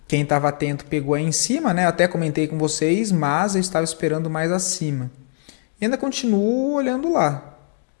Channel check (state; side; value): silent; right; digital silence